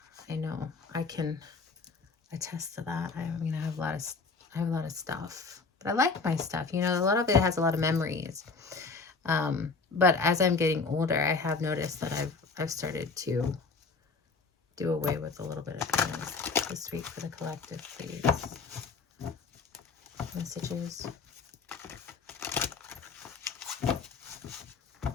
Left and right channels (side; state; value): right; quieter; 4.5 dB